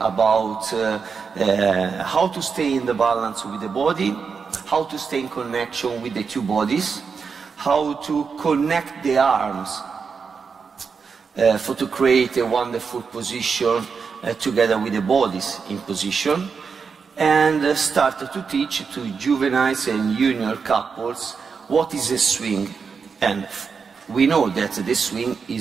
about how to stay in the balance with the body, how to stay in connection with the two bodies, how to connect the arms to create a wonderful position together with the bodies in position, and started to teach to juveniles and junior couples what is a swing. And we know that the swing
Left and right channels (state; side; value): quieter; left; 5.6 dB